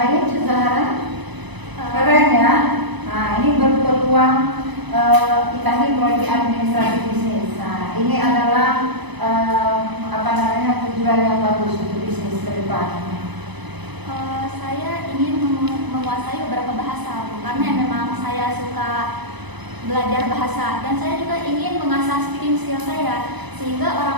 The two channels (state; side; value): late; left; 1.0 ms